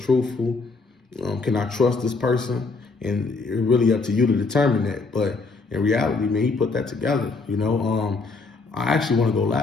Can I trust this person? And it's really up to you to determine that. But in reality, man, he put that together, you know. I actually want to go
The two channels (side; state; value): right; quieter; 3.9 dB